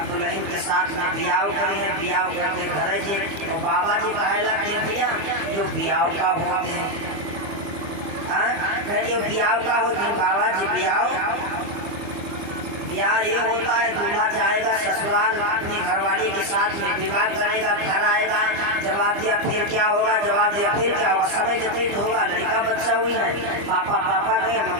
दुल्हन के साथ में ब्याह करी है, ब्याह करके घर जी। तो बाबा जी कहला के भैया जो ब्याह का होते हैं, जो ब्याह का होते हैं बाबा जी, ब्याह ये होता है दूल्हा जाएगा ससुराल, अपनी घरवाली के साथ में विवाह करेगा, घर आएगा। जवाब दिया फिर क्या होगा? जवाब दिया फिर क्या होगा? समय व्यतीत होगा, लड़का बच्चा हुई है, पापा पापा गए,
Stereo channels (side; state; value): left; late; 25 ms